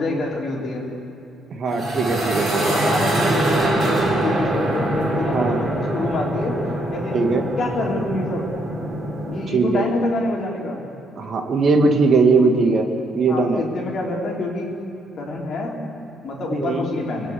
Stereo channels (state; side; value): normal; both; correlation 0.73